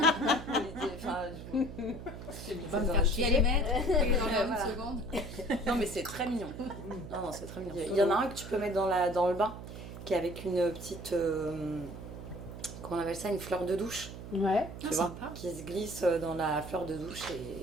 Va me faire chier les mettre et dans Voilà. une seconde. Non, mais c'est très mignon. Non, c'est très mignon. Il y en a un que tu peux mettre dans le bain, qui est avec une petite. Comment on appelle ça? Une fleur de douche. Ouais. Tu Ah, vois, sympa. qui se glisse dans la fleur de douche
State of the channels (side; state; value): right; noise; hum, 11 dB below the sound